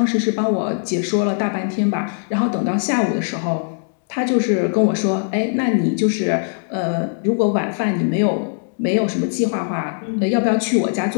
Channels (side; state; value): right; silent; digital silence